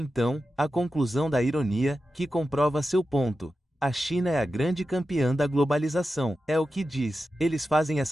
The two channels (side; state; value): both; normal; correlation 0.91